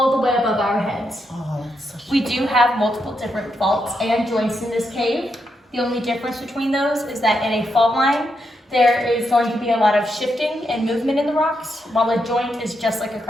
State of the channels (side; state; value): both; normal; correlation 0.82